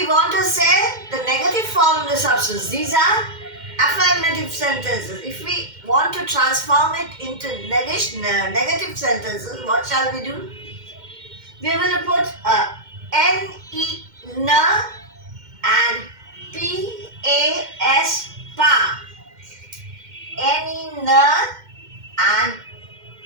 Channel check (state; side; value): late; left; 2.1 ms